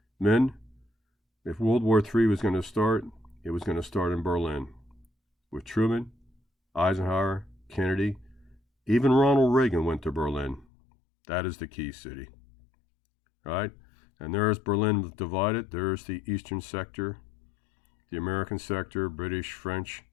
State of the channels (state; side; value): drops out; right; at 10.7 s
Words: Men, if World War III was going to start, it was going to start in Berlin with Truman, Eisenhower, Kennedy. Even Ronald Reagan went to Berlin. That is the key city, right? And there's Berlin divided. There's the eastern sector, the American sector, British, French,